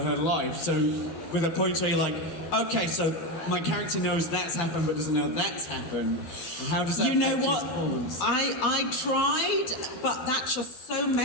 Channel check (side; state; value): right; late; 12 ms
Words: her life? So with a point where you're like, okay, so my character knows that's happened but doesn't know that's happened. And how does that You know affect your what? performance? I tried, but that just so